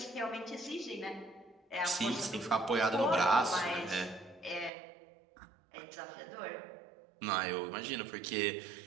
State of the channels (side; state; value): left; drops out; at 4.7 s